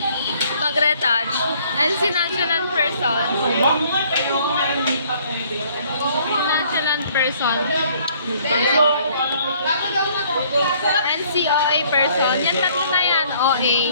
mag-retouch. And si nonchalant person. Si nonchalant person. And si OA person. Yan tatlo na yan,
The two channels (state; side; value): inverted; both; correlation -0.61